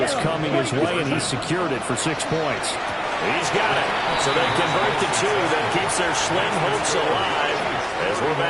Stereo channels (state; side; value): identical; both; correlation 1.00